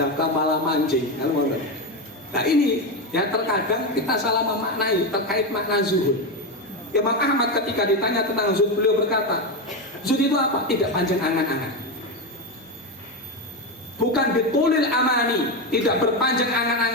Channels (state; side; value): normal; both; correlation 0.12